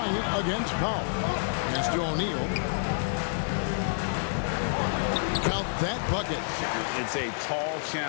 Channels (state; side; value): silent; right; digital silence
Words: against Powell. Pass to O'Neal. Count that bucket. It's a tall